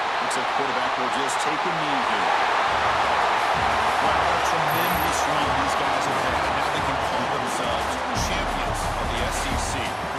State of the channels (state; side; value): identical; both; correlation 1.00